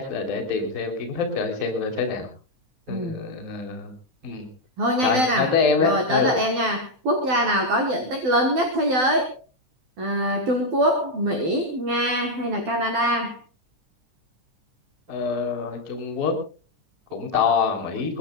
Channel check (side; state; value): left; late; 12 ms